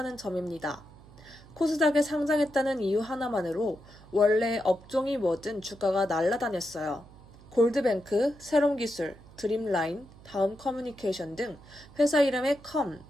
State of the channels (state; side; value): noise; right; hum, 22 dB below the sound